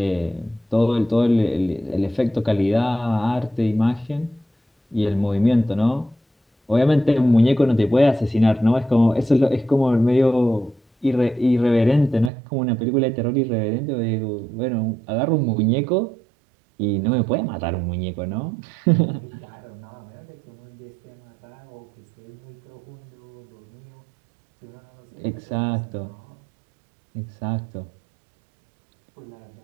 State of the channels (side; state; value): left; drops out; at 12.3 s